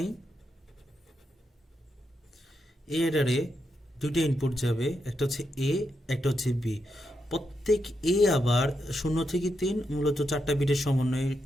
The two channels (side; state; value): both; normal; correlation 0.83